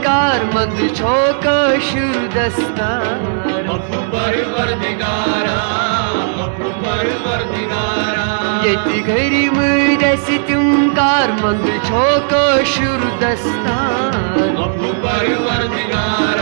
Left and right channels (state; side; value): silent; left; 68 dB below the other